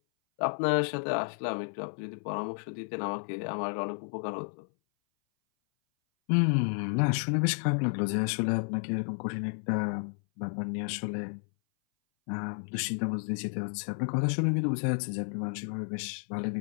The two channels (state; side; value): silent; right; 57 dB below the other